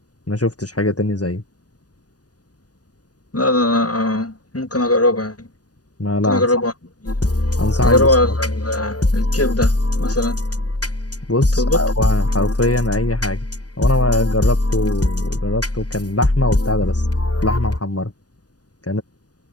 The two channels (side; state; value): right; late; 0.68 ms